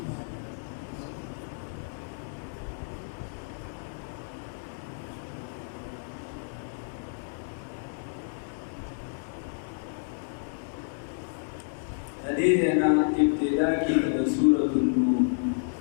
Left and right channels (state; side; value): silent; right; digital silence